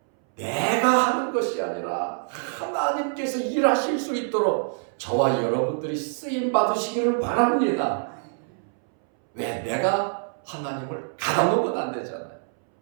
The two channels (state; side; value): silent; left; 62 dB below the other